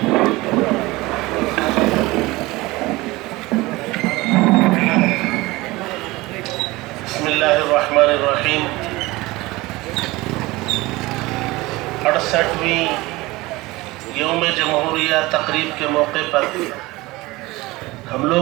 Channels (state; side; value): quieter; left; 20.8 dB